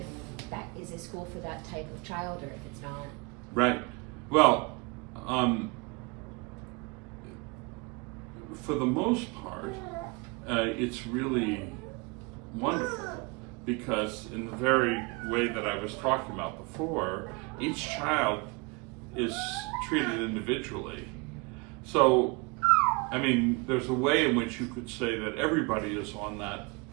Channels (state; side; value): quieter; left; 29.0 dB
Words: that is a school for that type of child or if it's not. Right. Well, for the most part, it's really wonderful, because in the very way that I was talking about before, each child is treated individually. So, I mean, there's a way in which you could say that everybody is on that